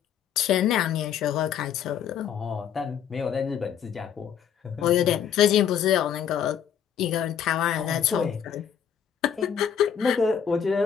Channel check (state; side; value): quieter; right; 8.4 dB